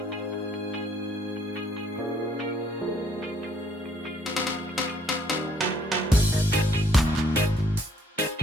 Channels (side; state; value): both; normal; correlation 0.64